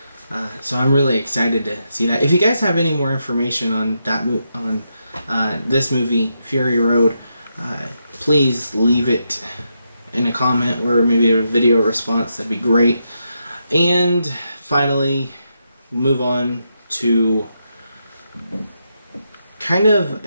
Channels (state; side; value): inverted; both; correlation -0.83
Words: So I'm really excited to see that. If you guys have any more information on that this movie, Fury Road, please leave it in a comment or maybe a video response. That'd be great. And finally, move on to kind of,